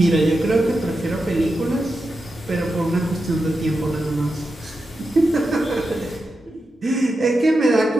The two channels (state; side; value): normal; both; correlation 0.89